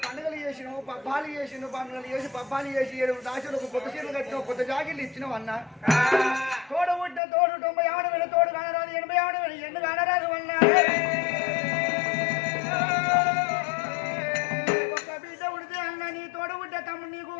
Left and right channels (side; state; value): right; drops out; at 7.2 s